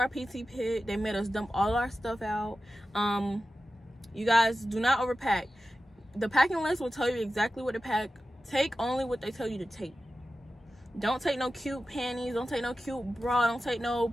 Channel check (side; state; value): both; normal; correlation 0.93